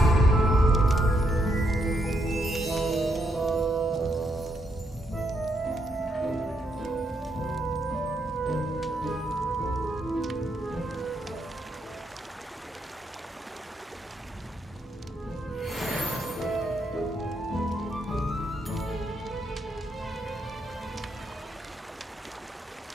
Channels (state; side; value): normal; both; correlation 0.77